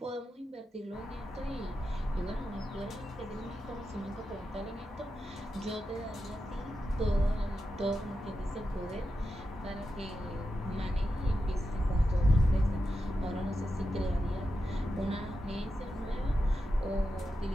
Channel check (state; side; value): normal; both; correlation 0.89